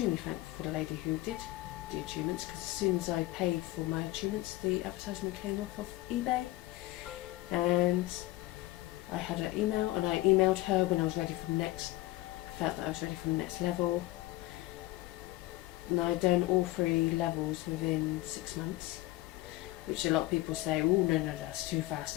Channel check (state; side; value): quieter; right; 18.3 dB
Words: thankful for the lady who did the attunements, because as soon as I paid for my attunements, the advertisement came off of eBay. And I had her email, and I emailed her when I was ready for the next, felt that I was ready for the next level. And I'd done all 3 levels within 6 months, which a lot of people say, oh no, that's too fast,